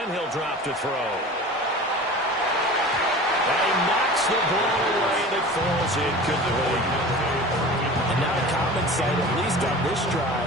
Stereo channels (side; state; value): both; normal; correlation 0.37